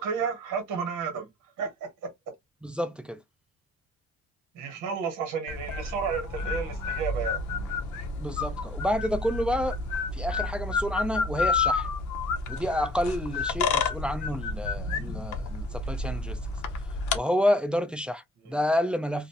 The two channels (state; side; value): normal; both; correlation 0.56